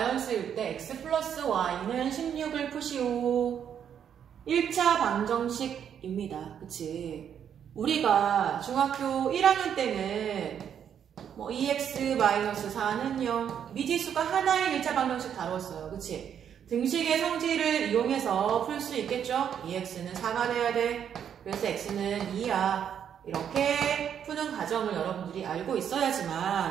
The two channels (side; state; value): left; quieter; 8.6 dB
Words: 때 x 플러스 y는 16을 푸시오. 1차 방정식입니다. 그치? 우리가 중학교 1학년 때는 2x-4는 0 미지수가 하나의 1차 방정식 다뤘어요. 그치? 등식의 성질을 이용해서 풀 수 있겠죠? 2x는 4가 돼야 돼. 그래서 x는 2야. 이렇게 푸는 과정을 여러분들이 알고